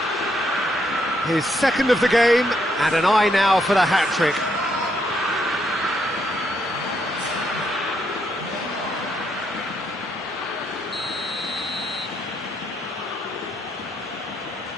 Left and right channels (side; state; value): both; normal; correlation 0.75